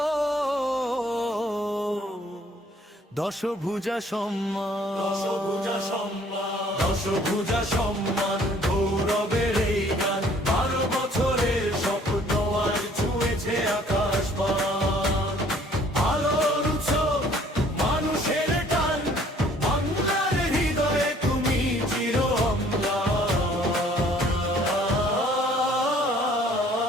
দশভুজা সম্মান, দশভুজা সম্মান, দশভুজা সম্মান, গৌরবের এই গান। 12 বছরের স্বপ্ন আজ ছুঁয়েছে আকাশ পান। আলোর উৎসব, মানুষের টান, বাংলার হৃদয়ে তুমি চির অম্লান।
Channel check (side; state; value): both; normal; correlation 0.58